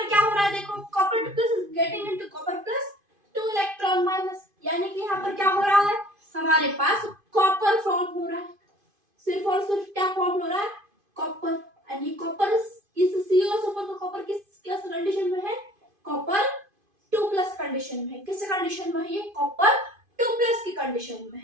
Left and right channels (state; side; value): late; left; 2.5 ms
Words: क्या हो रहा है? देखो copper plus is getting into copper plus 2 electron minus, यानी कि यहाँ पर क्या हो रहा है? हमारे पास कॉपर फॉर्म हो रहा है। सिर्फ और सिर्फ क्या फॉर्म हो रहा है? कॉपर। एंड ये कॉपर इस COSO4 का कॉपर किस कंडीशन में है? कॉपर 2+ कंडीशन में है। किस कंडीशन में है ये? कॉपर 2+ की कंडीशन में